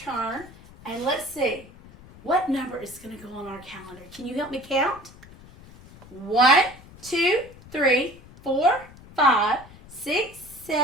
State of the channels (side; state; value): left; noise; rumble, 21 dB below the sound